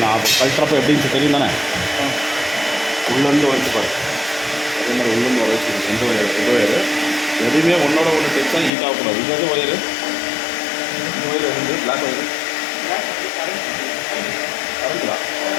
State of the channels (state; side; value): drops out; right; at 8.7 s